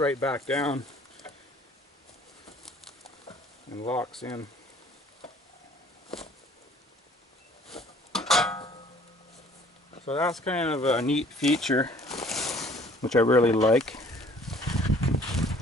back down and locks in. So that's kind of a neat feature, which I really like.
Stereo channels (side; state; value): both; normal; correlation 0.55